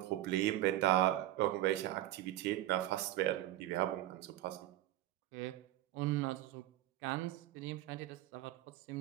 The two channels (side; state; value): left; quieter; 14.8 dB